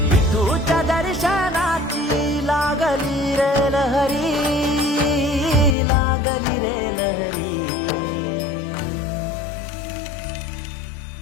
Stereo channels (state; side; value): drops out; right; at 5.8 s